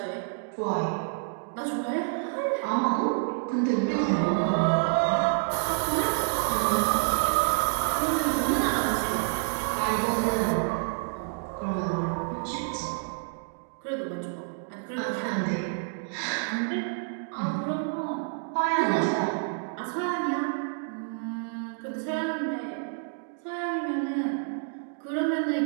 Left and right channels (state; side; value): silent; left; 59 dB below the other